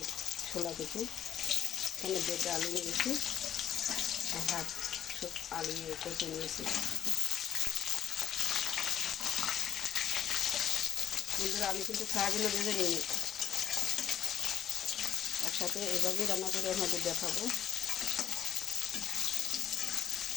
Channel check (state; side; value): quieter; right; 10.1 dB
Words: ছোলা কচু, এখানে বেটে আলু নিয়েছি আর হাফ আলু কচু নিয়েছি। বন্ধুরা, আমি কিন্তু ফ্রাইগুলো ভেজে নিই, একসাথে এভাবেই রান্না করে আমাদের দেখাবো।